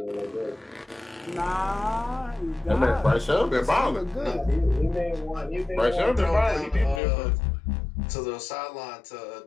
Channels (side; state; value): right; drops out; at 7.0 s